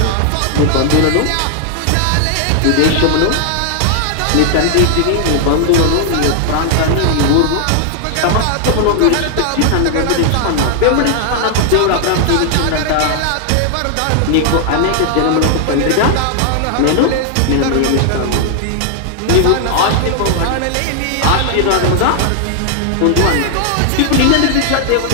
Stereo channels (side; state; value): both; different; correlation 0.00